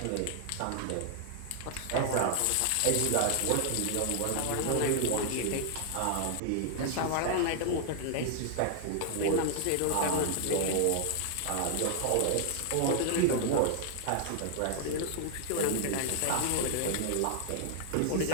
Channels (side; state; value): both; different; correlation 0.00